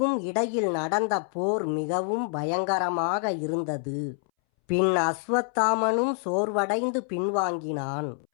இடையில் நடந்த போர் மிகவும் பயங்கரமாக இருந்தது. பின் அஸ்வத்தாமனும் சோர்வடைந்து பின்வாங்கினான்.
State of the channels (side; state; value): right; silent; 60 dB below the other